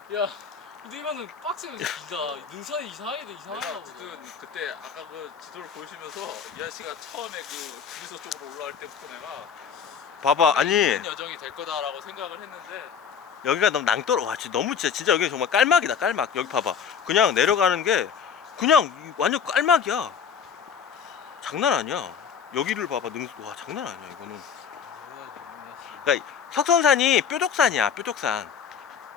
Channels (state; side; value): quieter; right; 7.1 dB